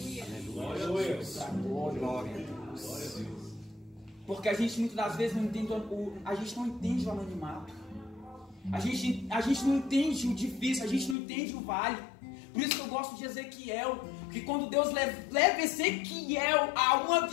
Aleluia. Glória a Deus. Porque a gente muitas das vezes não entende a gente não entende o anonimato. A gente não entende o difícil, a gente não entende o vale. Por isso que eu gosto de Ezequiel, que quando Deus leva Ezequiel a uma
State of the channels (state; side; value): drops out; right; at 11.2 s